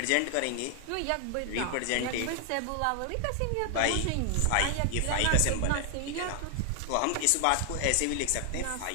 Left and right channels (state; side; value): different; both; correlation 0.00